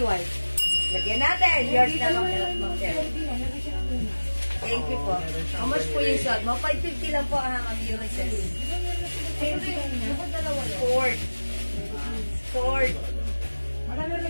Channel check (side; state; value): both; inverted; correlation -1.00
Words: White. Lagyan natin. Yours na lang. Ma'am Terry. Thank you po. How much po yung suot mo? 550 lang po ang Urises. Ford. Marami rin